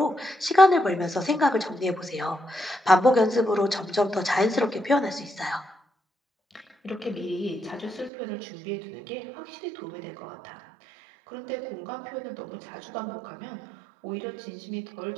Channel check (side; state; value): left; drops out; at 8.1 s